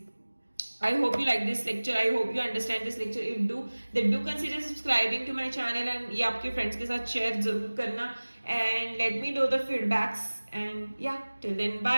I hope you like this lecture. I hope you understand this lecture. If do, then do consider subscribing to my channel and ये आपके friends के साथ share जरूर करना and let me know the feedbacks and yeah, till then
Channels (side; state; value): both; inverted; correlation -1.00